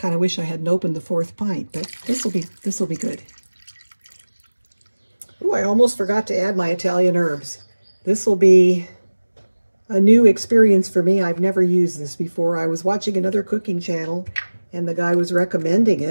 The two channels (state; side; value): inverted; both; correlation -1.00